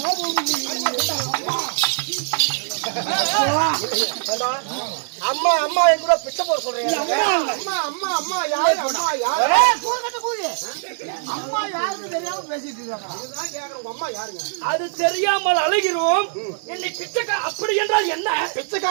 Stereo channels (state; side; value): silent; left; digital silence